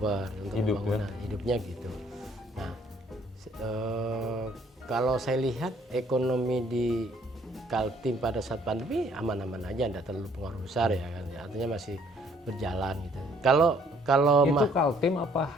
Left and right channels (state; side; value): normal; both; correlation 0.62